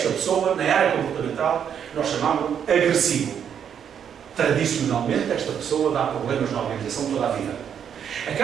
pessoa, na área comportamental, nós chamamos agressivo. Tradicionalmente, esta pessoa dá problemas na organização toda a vida.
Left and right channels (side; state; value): left; quieter; 8.3 dB